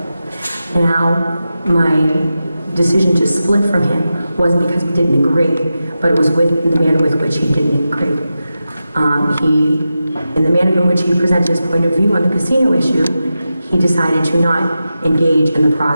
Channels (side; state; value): both; inverted; correlation -0.92